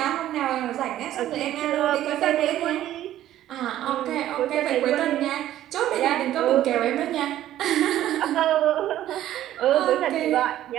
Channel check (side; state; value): left; quieter; 12.9 dB